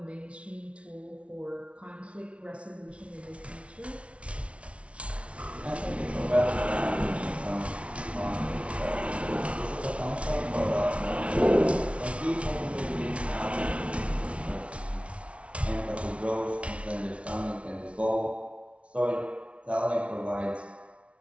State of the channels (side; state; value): left; late; 0.061 ms